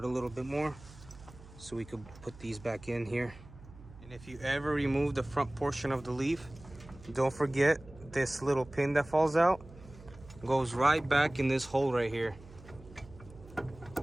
a little bit more so we could put these back in here. And if you ever remove the front portion of the leaf, don't forget this little pin that falls out goes right back in this hole right here.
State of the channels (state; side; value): noise; right; hum, 19 dB below the sound